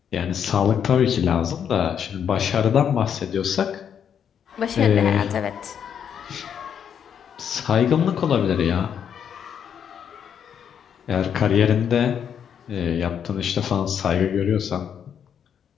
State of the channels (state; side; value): quieter; right; 8.2 dB